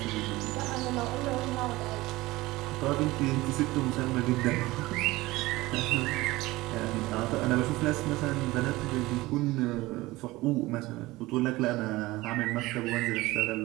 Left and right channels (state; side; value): quieter; left; 19.5 dB